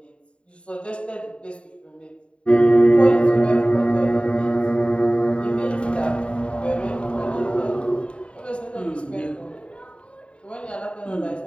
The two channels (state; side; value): late; right; 0.059 ms